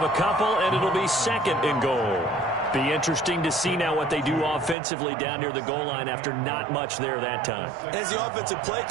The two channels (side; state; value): left; drops out; at 4.8 s